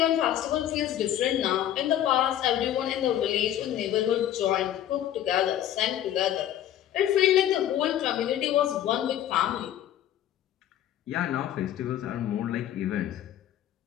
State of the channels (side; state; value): right; quieter; 11.6 dB